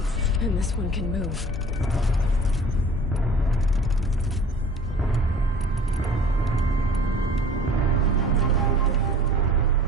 And this one can move.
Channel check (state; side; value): normal; both; correlation 0.47